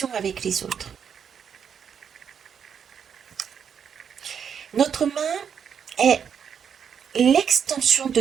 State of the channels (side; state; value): left; quieter; 7.5 dB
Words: avec les autres. Notre main est l'extension de